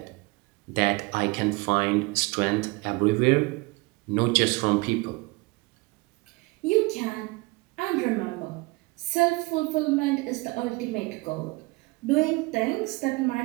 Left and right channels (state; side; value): quieter; left; 25.0 dB